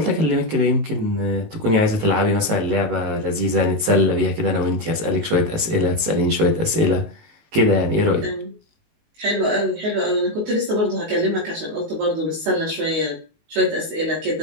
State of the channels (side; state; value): left; late; 19 ms